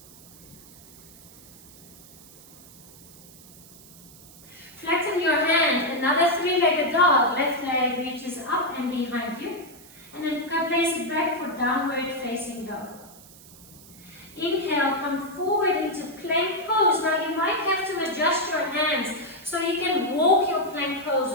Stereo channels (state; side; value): noise; right; hiss, 21 dB below the sound